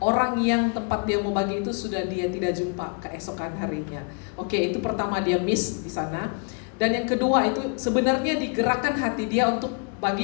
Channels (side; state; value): right; quieter; 38.9 dB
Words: orang yang tempat dia mau bagi itu sudah dia tidak jumpa keesokan harinya. Oke, itu pertama dia miss di sana. Dan yang kedua itu sebenarnya digerakkan hati dia untuk